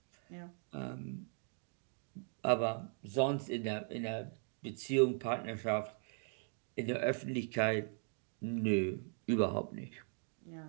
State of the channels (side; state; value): left; silent; 52 dB below the other